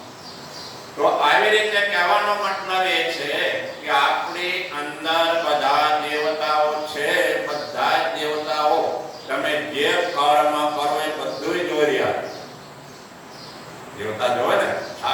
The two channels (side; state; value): both; identical; correlation 1.00